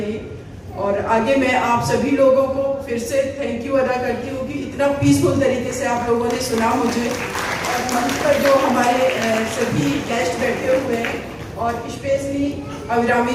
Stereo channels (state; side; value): identical; both; correlation 1.00